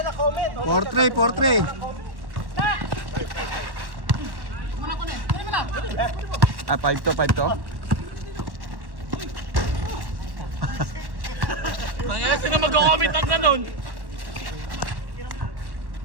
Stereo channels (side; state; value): left; late; 1.1 ms